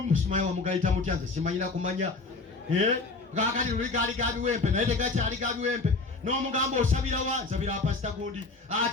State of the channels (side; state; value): right; quieter; 3.7 dB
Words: musimayi wamugayita mutya nze simanyira kumanya. Kakati luli gaali gabiwempe naye tegakyali gabiwempe. N'omugamba osabira wa? Nsabira pasita gundi.